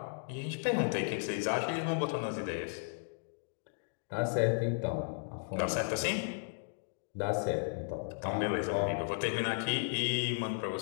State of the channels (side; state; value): right; silent; digital silence